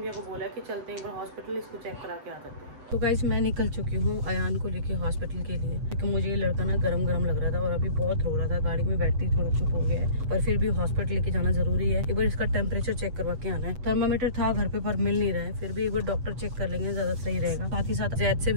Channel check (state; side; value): late; left; 8.0 ms